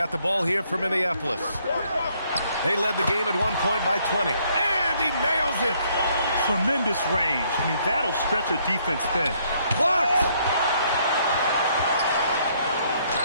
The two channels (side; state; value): both; inverted; correlation -0.68